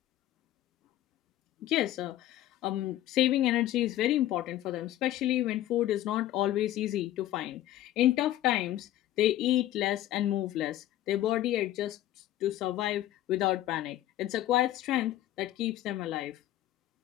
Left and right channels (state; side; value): quieter; right; 13.7 dB